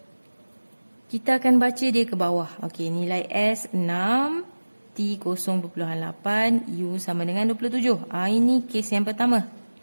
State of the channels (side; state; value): both; inverted; correlation -1.00